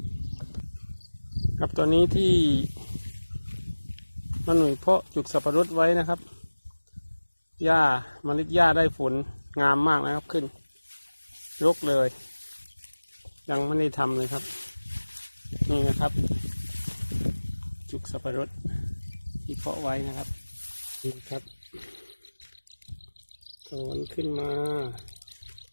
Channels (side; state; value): both; inverted; correlation -1.00